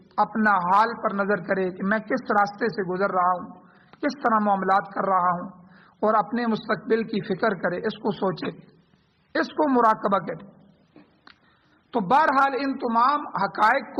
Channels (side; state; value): both; identical; correlation 1.00